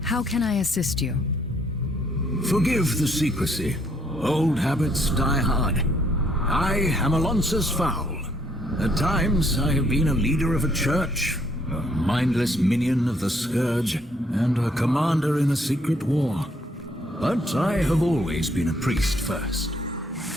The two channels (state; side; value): normal; both; correlation 0.67